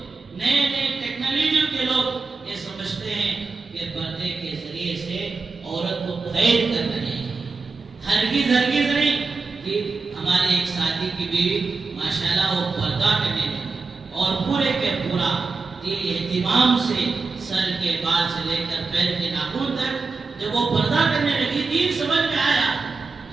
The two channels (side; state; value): left; quieter; 4.1 dB